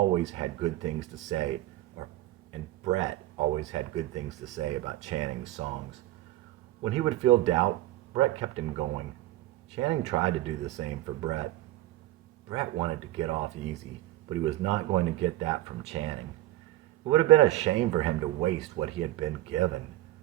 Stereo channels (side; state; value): left; quieter; 15.8 dB